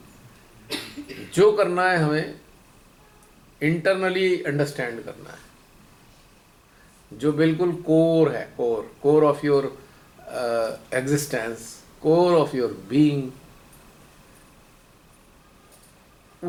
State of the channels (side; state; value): both; identical; correlation 1.00